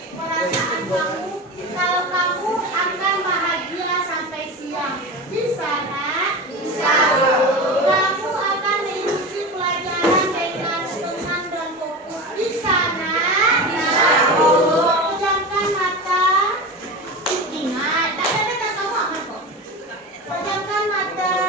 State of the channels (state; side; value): normal; both; correlation 0.27